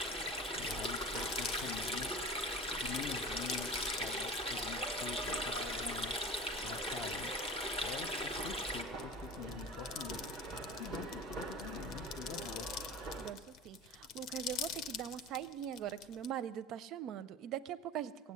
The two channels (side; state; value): both; normal; correlation 0.35